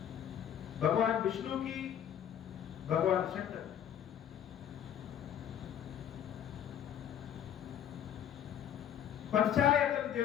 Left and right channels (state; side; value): quieter; right; 9.8 dB